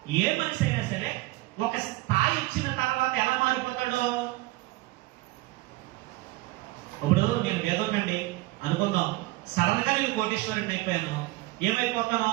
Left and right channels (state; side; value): quieter; left; 20.1 dB